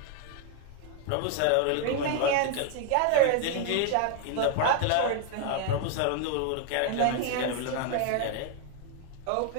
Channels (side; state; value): both; different; correlation 0.00